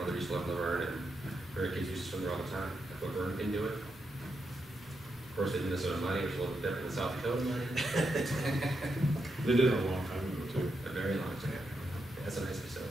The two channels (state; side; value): normal; both; correlation 0.84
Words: used to live in Laverne, and her kids used to swim there all the time. If Laverne can do it. Of course, they did Minnesota money, which is a little bit different than South Dakota money. They did it a long time ago, too. A very long time. That's a nice